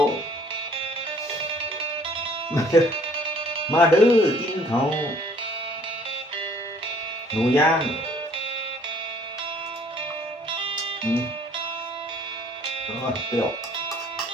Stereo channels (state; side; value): normal; both; correlation 0.58